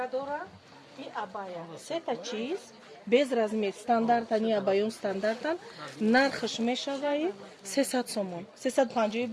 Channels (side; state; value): both; identical; correlation 1.00